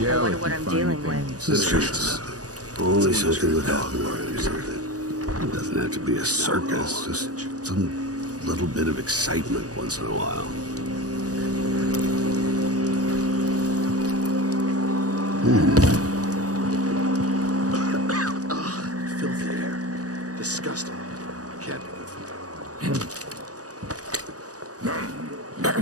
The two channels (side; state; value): left; late; 0.67 ms